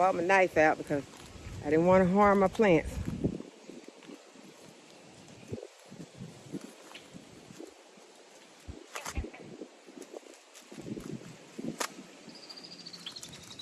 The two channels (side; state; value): both; identical; correlation 1.00